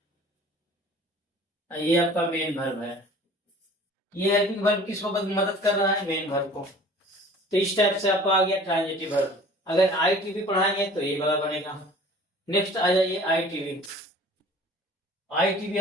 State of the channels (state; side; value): normal; both; correlation 0.47